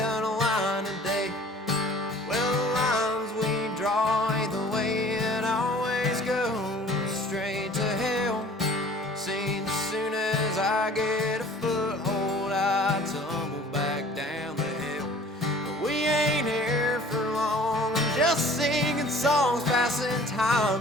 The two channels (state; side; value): normal; both; correlation 0.49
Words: a line today. Well, the lines we draw ain't the way it always goes, straight to hell. Seems as soon as I get a foothold, I tumble back down the hill. But we ain't here for long, I'm just singing songs, passing